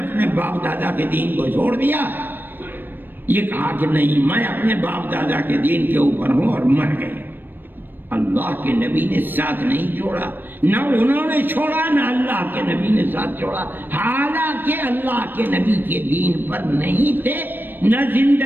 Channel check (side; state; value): left; late; 0.094 ms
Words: باپ دادا کے دین کو چھوڑ دیا؟ یہ کہا کہ نہیں، میں اپنے باپ دادا کے دین کے اوپر ہوں اور مر گئے۔ اللہ کے نبی نے ساتھ نہیں چھوڑا، نہ انہوں نے چھوڑا نہ اللہ کے نبی نے ساتھ چھوڑا، حالانکہ اللہ کے نبی کے دین پر نہیں تھے، نہ